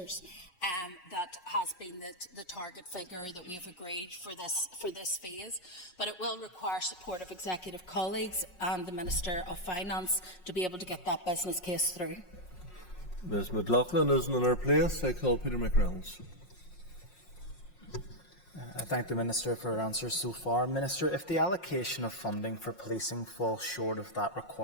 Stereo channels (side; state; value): right; late; 5.5 ms